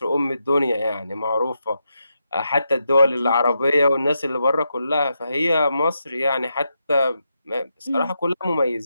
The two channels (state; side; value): inverted; both; correlation -0.84